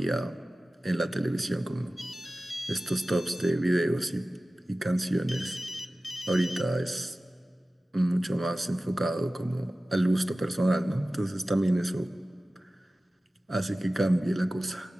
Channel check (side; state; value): both; normal; correlation 0.96